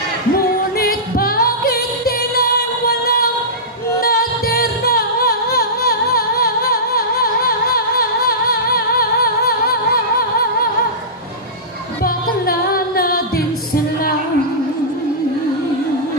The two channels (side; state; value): both; normal; correlation -0.16